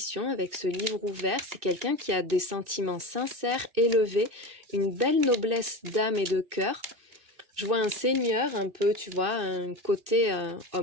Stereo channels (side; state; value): left; late; 2.6 ms